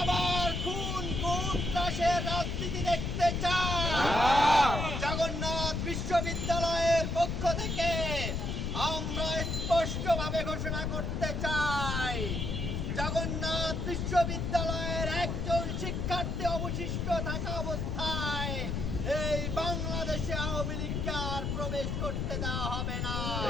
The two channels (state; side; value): noise; left; rumble, 1 dB below the sound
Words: আবার খুন ত্রাসের রাজনীতি দেখতে চাই? জগন্নাথ বিশ্ববিদ্যালয়ের পক্ষ থেকে আমরা স্পষ্টভাবে ঘোষণা করতে চাই, জগন্নাথ বিশ্ববিদ্যালয়ের একজন শিক্ষার্থী অবশিষ্ট থাকা অবস্থায় এই বাংলাদেশে আওয়ামী লীগকে আর প্রবেশ করতে দেওয়া হবে না।